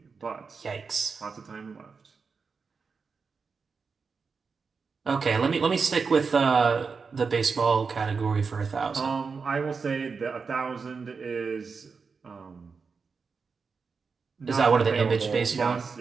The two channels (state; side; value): quieter; left; 5.1 dB